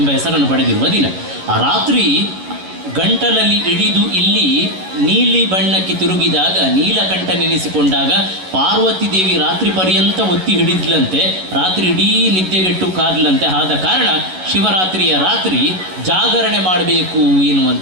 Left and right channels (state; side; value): late; left; 11 ms